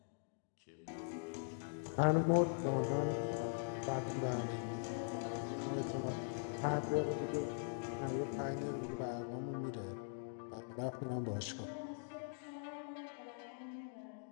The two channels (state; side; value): silent; right; digital silence